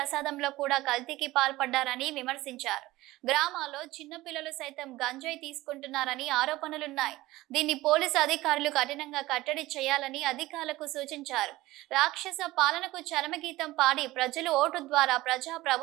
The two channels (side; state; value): left; quieter; 18.0 dB